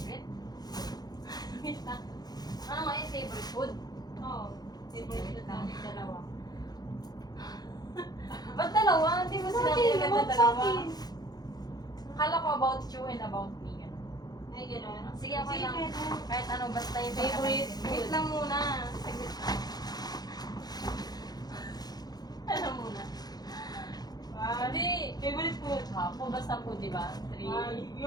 Wait lang. Ano nga yung favorite food? Oo. Favorite food namin dalawa. Ba't dalawa? Hindi mo sinabi Bakit? agad na About dalawa. sa akin. Akala ko about you and about me. Ganun. Ay, gano'n. Sige, okay lang. pwede. Kahit ano, basta yung Favorite pinaka- food. Wait lang muna. Saglit lang. Ano muna? Hindi. Favorite food. Kung basta food, di ba? 3. Ay,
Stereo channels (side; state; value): right; late; 0.19 ms